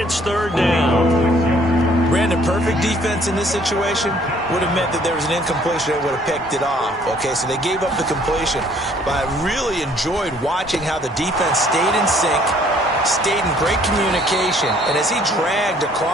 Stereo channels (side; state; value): both; normal; correlation 0.60